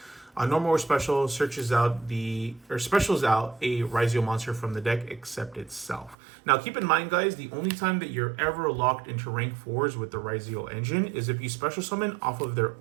Normal or special specials out a Ryzeal monster from the deck except itself. Now keep in mind, guys, the only time that you're ever locked into rank 4s with the Ryzeal engine is if you special summon off of their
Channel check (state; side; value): drops out; left; at 6.2 s